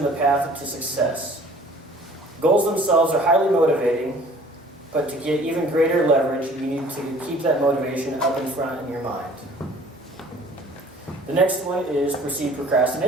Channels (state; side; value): normal; both; correlation 0.51